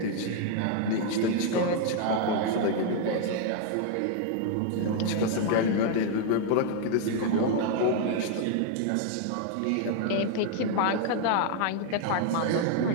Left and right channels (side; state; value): both; different; correlation 0.00